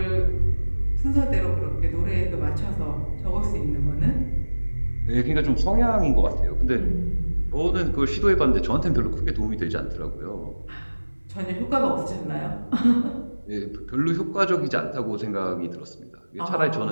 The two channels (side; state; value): both; inverted; correlation -1.00